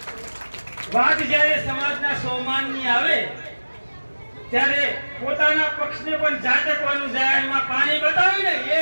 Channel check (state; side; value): inverted; both; correlation -1.00